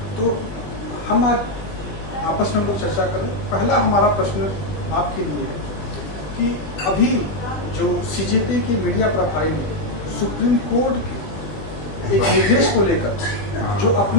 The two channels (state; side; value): late; right; 20 ms